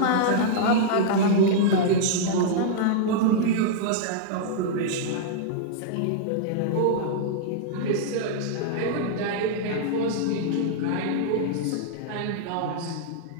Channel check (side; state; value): both; different; correlation -0.02